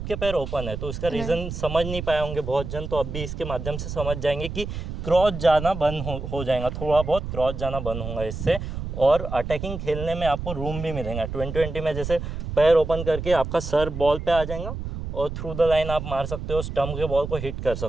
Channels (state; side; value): noise; right; rumble, 6 dB below the sound